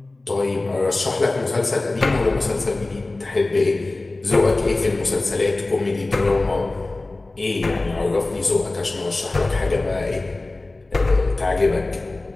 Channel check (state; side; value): quieter; right; 3.0 dB